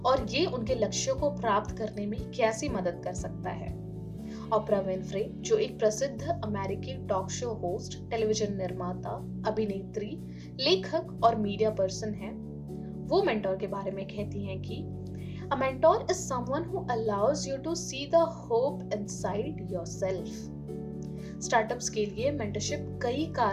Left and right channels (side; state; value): both; identical; correlation 1.00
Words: और ये उनके लक्ष्यों को प्राप्त करने में कैसी मदद कर सकता है। ओपरा विनफ्रे, जो एक प्रसिद्ध अमेरिकी टॉक शो होस्ट, टेलीविजन निर्माता, अभिनेत्री, लेखक और मीडिया पर्सन है, वो मेंटोर के बारे में कहती हैं कि A mentor is someone who allows you to see the hope inside yourself. Startups के लिए मेंटरशिप कई